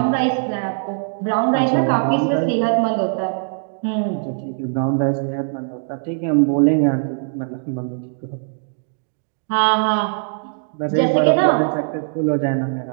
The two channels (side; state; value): left; silent; digital silence